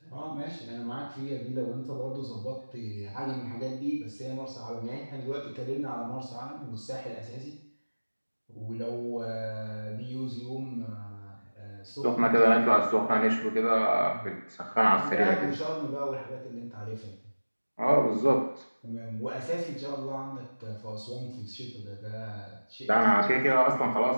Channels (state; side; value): inverted; both; correlation -1.00